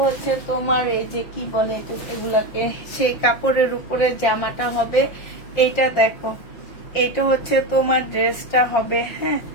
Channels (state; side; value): late; right; 5.6 ms